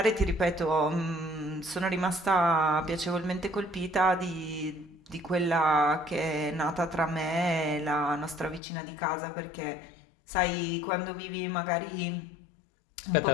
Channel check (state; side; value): drops out; right; at 8.6 s